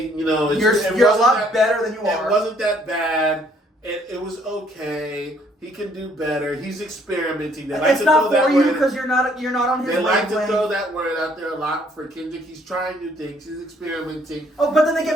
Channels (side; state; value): both; normal; correlation 0.64